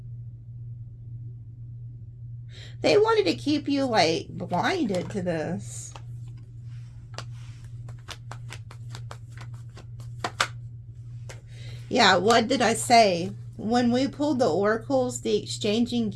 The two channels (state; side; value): identical; both; correlation 1.00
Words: They wanted to keep you, like, blinded to this. Yeah, what did I say? When we pulled the oracles, the exchanging